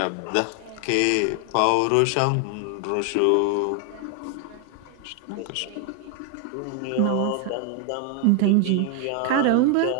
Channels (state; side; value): different; both; correlation 0.01